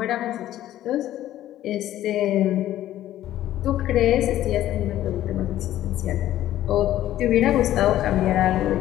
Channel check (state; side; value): quieter; right; 13.2 dB